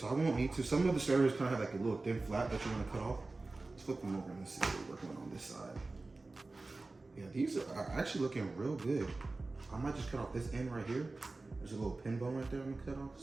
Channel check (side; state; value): left; quieter; 3.4 dB